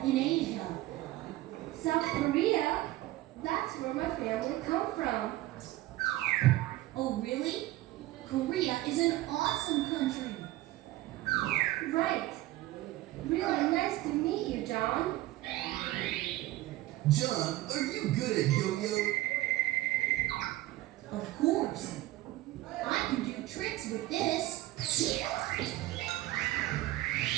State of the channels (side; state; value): left; quieter; 16.9 dB